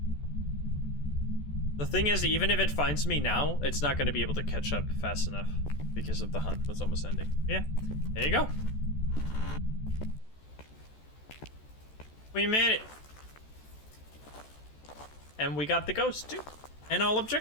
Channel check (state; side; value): late; right; 14 ms